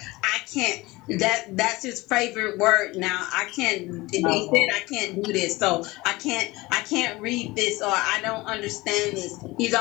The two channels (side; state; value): right; quieter; 21.2 dB